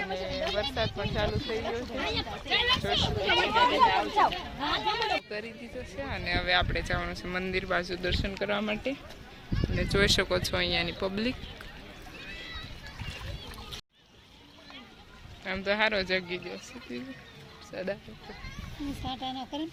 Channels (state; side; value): identical; both; correlation 1.00